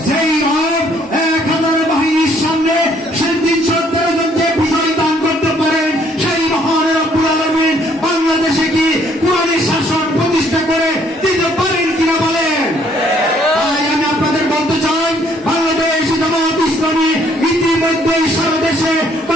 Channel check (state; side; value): normal; both; correlation 0.64